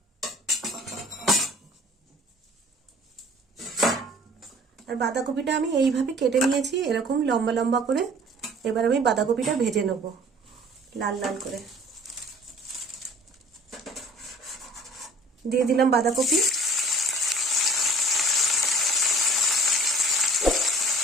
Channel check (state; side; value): normal; both; correlation 0.49